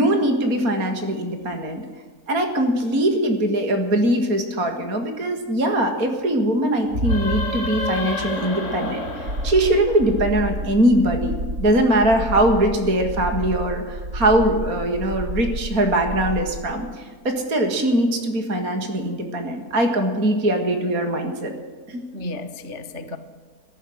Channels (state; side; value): late; left; 4.2 ms